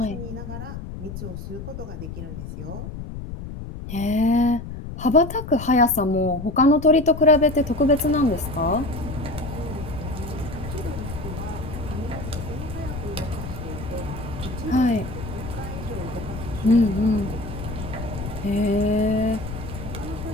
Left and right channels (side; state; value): left; noise; rumble, 8 dB below the sound